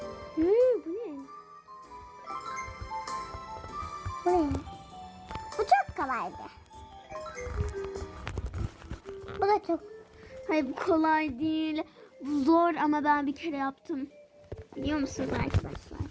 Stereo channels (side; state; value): both; identical; correlation 1.00